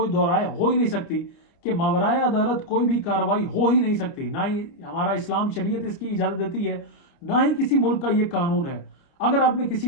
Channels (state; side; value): late; right; 29 ms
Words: دو رائے ہو ہی نہیں سکتی کہ ماورائے عدالت کوئی بھی کارروائی ہو ہی نہیں سکتی، نہ ہی ہمارا اسلام شریعت اس کی اجازت دیتی ہے، نہ ہی کسی ملک کا یہ قانون ہے۔ اگر آپ نے کسی